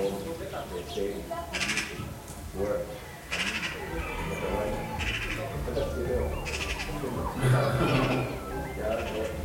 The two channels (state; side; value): identical; both; correlation 1.00